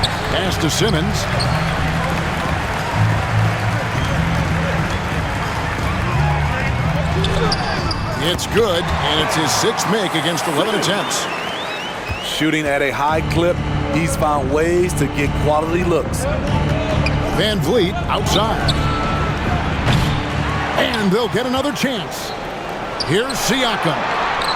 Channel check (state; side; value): identical; both; correlation 1.00